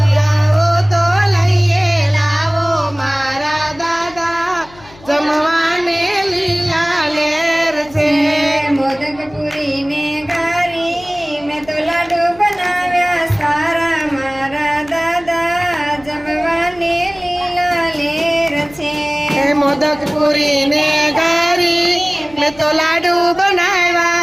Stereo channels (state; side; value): noise; left; hum, 23 dB below the sound